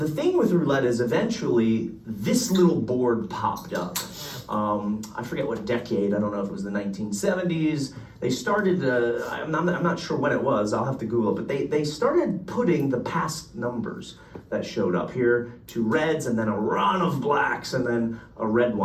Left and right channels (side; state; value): both; identical; correlation 1.00